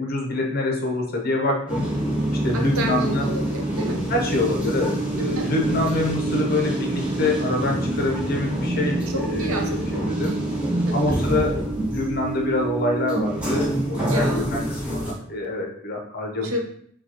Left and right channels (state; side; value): normal; both; correlation 0.52